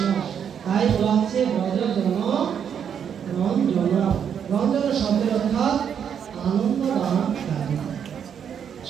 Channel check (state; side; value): quieter; left; 8.0 dB